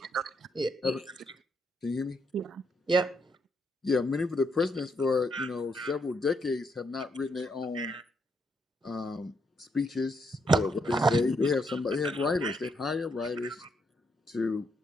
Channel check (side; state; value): both; normal; correlation 0.77